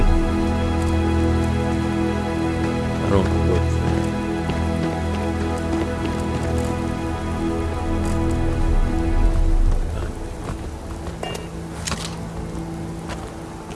I don't know what's there.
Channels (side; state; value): both; identical; correlation 1.00